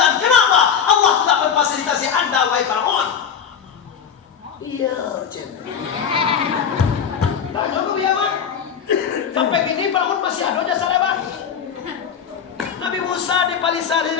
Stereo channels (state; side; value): quieter; right; 7.5 dB